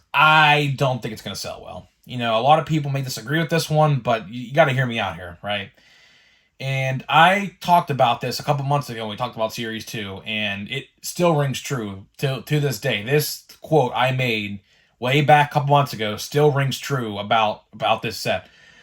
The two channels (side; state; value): both; identical; correlation 1.00